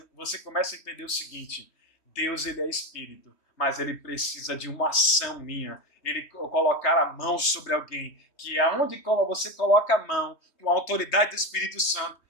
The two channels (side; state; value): right; late; 3.1 ms